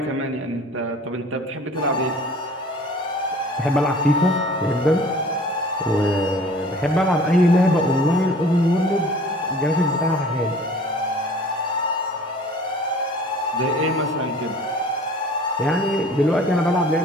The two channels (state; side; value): normal; both; correlation 0.48